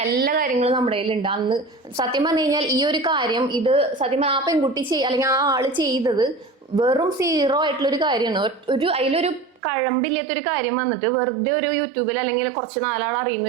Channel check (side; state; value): left; drops out; at 9.6 s